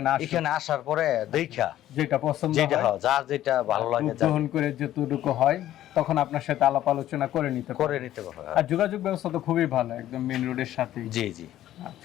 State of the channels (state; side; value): quieter; right; 13.0 dB